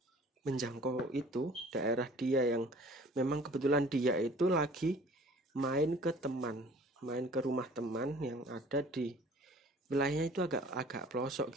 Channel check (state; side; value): normal; both; correlation 0.50